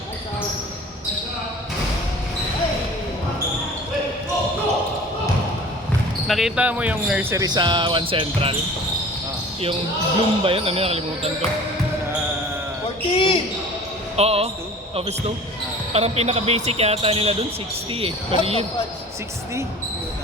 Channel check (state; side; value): normal; both; correlation 0.43